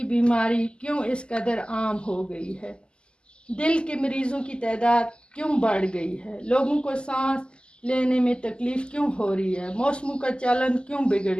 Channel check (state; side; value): late; right; 0.050 ms